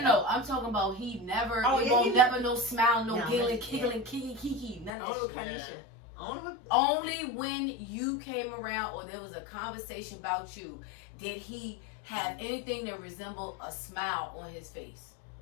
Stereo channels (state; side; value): drops out; right; at 4.9 s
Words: I'm talking about he never. Oh, He yeah, won't he- never no smile, no No, giggling, yeah. giggling, kiki, none of Only that kind shit. of shit. Only Only when you came around or there was a conversation about you did he have anything that resembled a smile on his face.